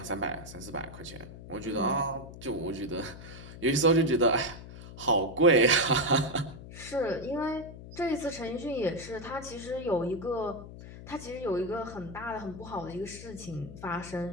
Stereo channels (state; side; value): noise; left; hum, 14 dB below the sound